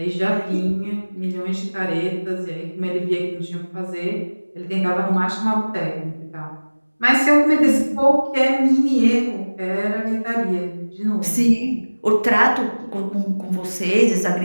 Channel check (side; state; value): both; inverted; correlation -1.00